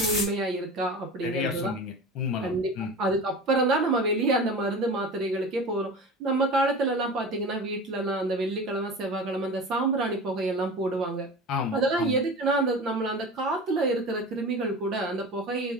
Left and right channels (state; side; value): normal; both; correlation 0.33